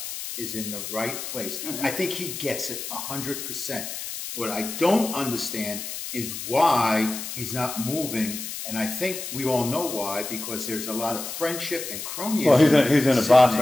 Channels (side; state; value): left; noise; hiss, 7 dB below the sound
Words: is in the right place. Mm-hmm. I think he gets it 100%. What I don't understand is why he's not moving. And I think we all know why, because there's a lot of friendship and cronyism. Well, he's in a box